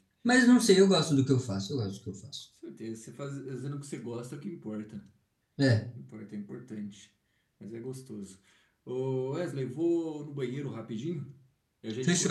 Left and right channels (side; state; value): both; identical; correlation 1.00